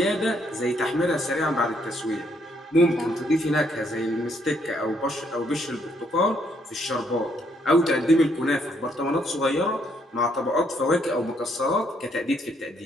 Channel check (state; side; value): normal; both; correlation 0.71